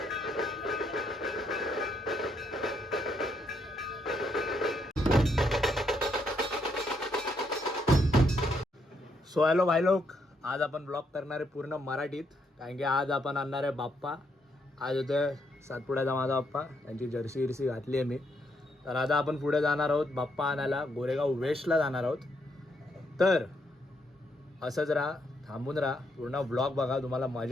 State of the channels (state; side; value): normal; both; correlation 0.76